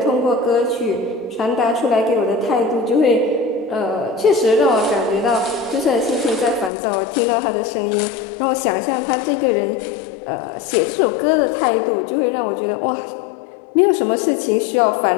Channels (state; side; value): drops out; right; at 6.7 s